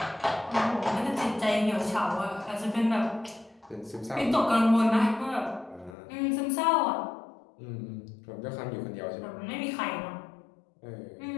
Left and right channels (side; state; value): right; drops out; at 6.0 s